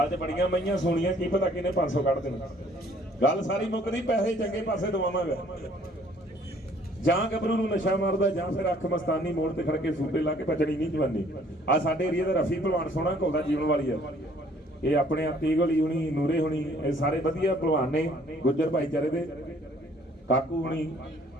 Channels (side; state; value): both; normal; correlation 0.59